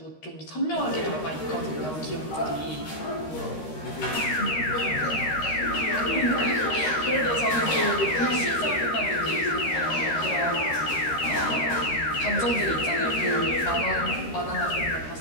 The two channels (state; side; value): late; right; 13 ms